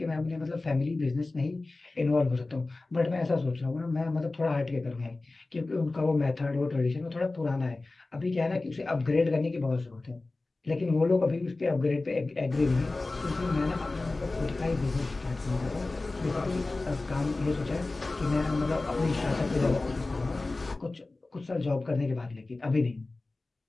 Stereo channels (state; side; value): quieter; right; 3.2 dB